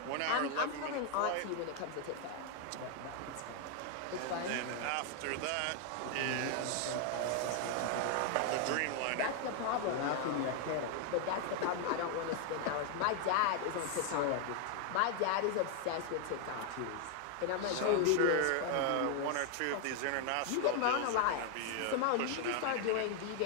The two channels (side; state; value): both; different; correlation 0.00